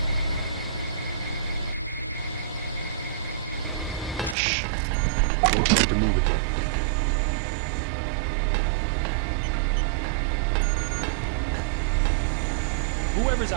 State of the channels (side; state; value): left; drops out; at 4.4 s